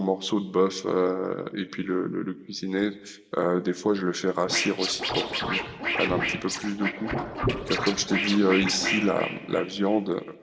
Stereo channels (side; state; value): both; identical; correlation 1.00